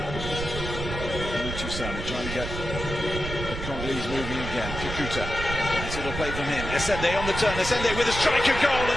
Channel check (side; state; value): right; noise; rumble, 6 dB below the sound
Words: Trying to get the Congolese moving again. Kakuta. Nice little play from him. Esende on the turn. Esende with a striker goal,